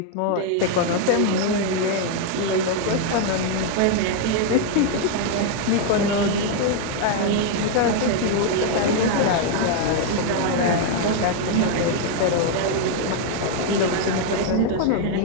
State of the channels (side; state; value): both; different; correlation 0.00